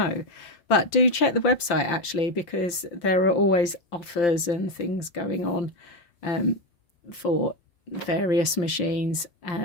But do check the website actually, because there are always offers and things going on for various machines.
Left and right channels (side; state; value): right; late; 5.7 ms